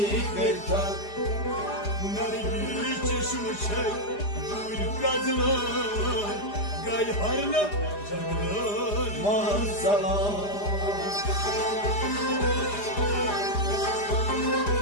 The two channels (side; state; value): right; late; 4.9 ms